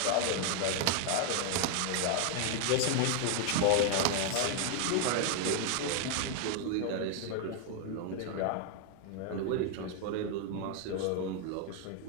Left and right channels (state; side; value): different; both; correlation 0.01